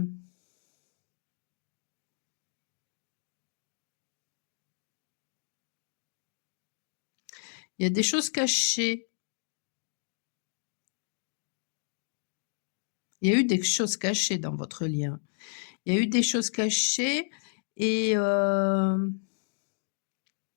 il y a des choses cachées. Il y a eu des choses cachées dans votre lien. Il y a eu des choses cachées et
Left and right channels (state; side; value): silent; right; digital silence